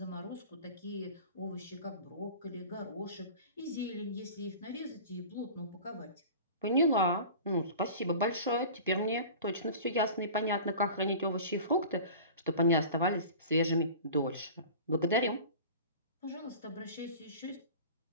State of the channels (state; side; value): inverted; both; correlation -0.38